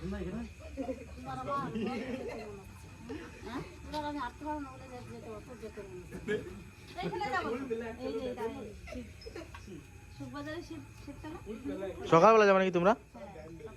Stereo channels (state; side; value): identical; both; correlation 1.00